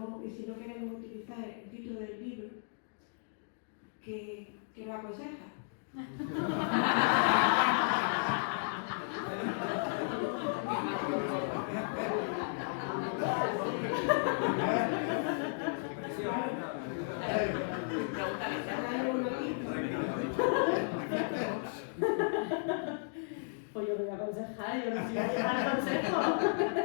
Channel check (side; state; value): right; silent; digital silence